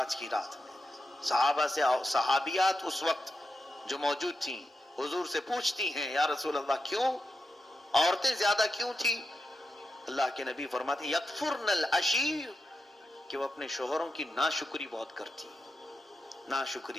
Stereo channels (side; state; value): both; normal; correlation 0.89